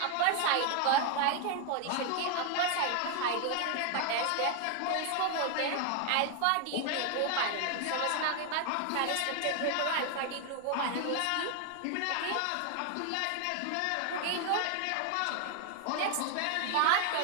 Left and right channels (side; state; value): both; different; correlation 0.00